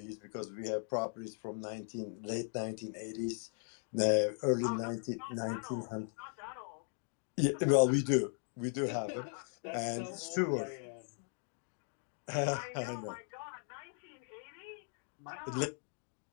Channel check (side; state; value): right; silent; 52 dB below the other